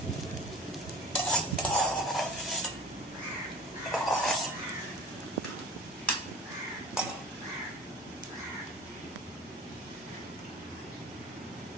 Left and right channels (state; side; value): normal; both; correlation 0.40